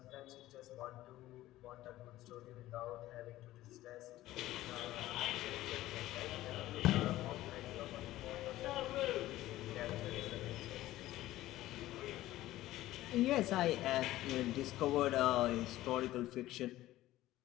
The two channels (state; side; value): quieter; right; 15.6 dB